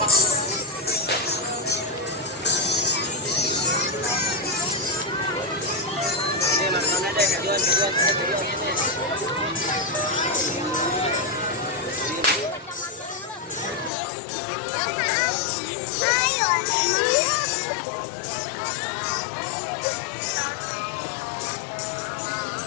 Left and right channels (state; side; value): drops out; right; at 13.9 s